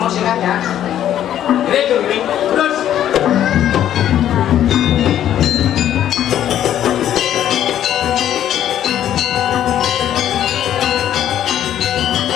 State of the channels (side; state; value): right; quieter; 11.1 dB